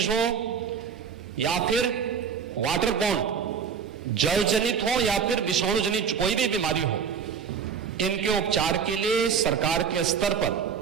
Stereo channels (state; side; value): quieter; left; 7.0 dB